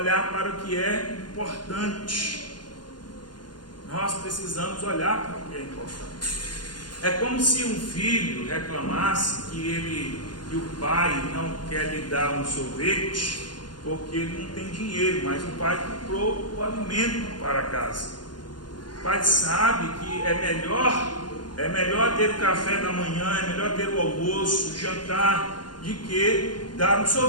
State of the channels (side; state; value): right; late; 0.71 ms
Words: para o que é importante, nós precisamos olhar para o que é importante. É como se um filho reclamasse que o pai não quer lhe dar um sorvete porque ele não tem dinheiro, mas o pai comprou o alimento para casa. O pai sabe que é melhor ter o café da manhã, é melhor ter o almoço, o jantar, de que dar um